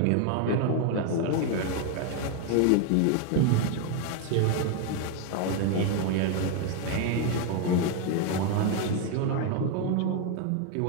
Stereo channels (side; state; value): both; different; correlation 0.01